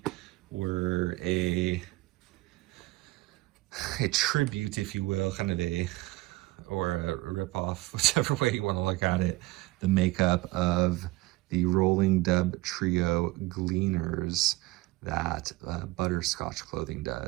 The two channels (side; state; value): left; quieter; 20.1 dB